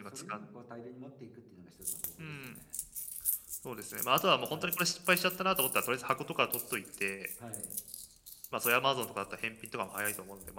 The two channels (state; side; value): identical; both; correlation 1.00